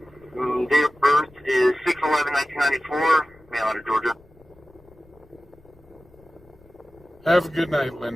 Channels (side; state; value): left; noise; rumble, 28 dB below the sound